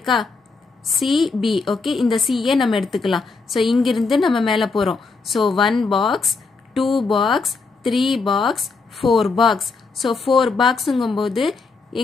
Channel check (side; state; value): right; quieter; 4.3 dB